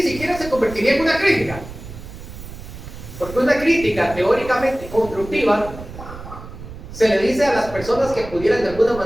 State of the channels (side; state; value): right; noise; rumble, 13 dB below the sound